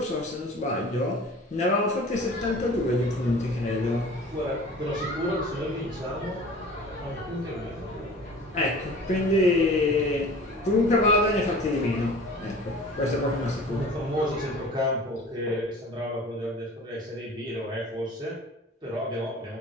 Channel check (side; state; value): both; normal; correlation 0.43